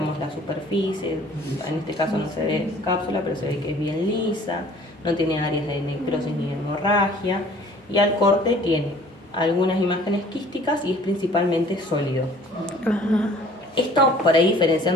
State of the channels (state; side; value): normal; both; correlation 0.52